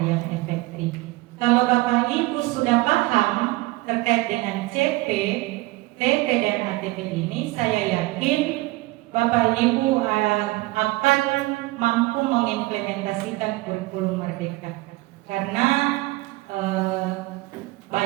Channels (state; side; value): quieter; left; 20.5 dB